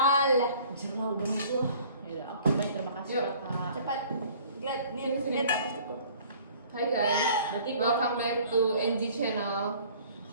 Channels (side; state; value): both; inverted; correlation -0.52